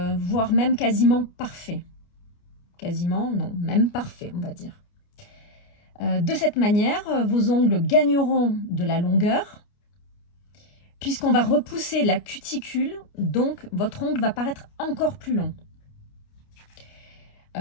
même quasiment parfait. Quasiment, non, même parfait, on va dire. De cette manière, vos ongles gagneront de la longueur, puisqu'on va repousser la cuticule, donc votre ongle va paraître encore plus long.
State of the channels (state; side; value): late; right; 29 ms